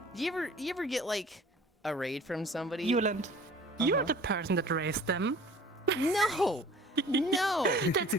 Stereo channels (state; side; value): normal; both; correlation 0.47